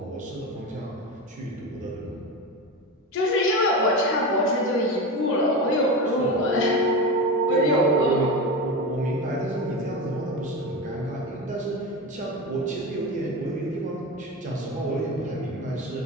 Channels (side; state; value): both; normal; correlation 0.22